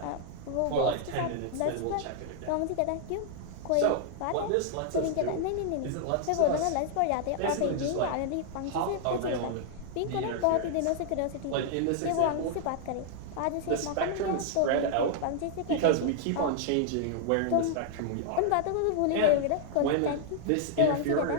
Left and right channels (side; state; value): both; different; correlation -0.01